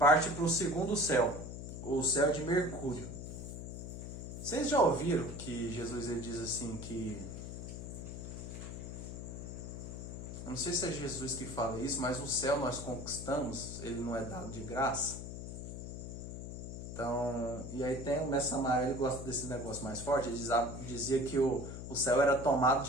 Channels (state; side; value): noise; left; hum, 8 dB below the sound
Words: para o segundo céu, o céu de Mercúrio. Vocês já ouviram que Jesus ele diz assim que... Eu não sei se é Jesus que fala isso, mas o céu nós conquistamos, ele não é dado de graça. Então, e aí tem o Mestre Samael, ele gosta desse negócio mais forte, ele dizia que o céu era tomado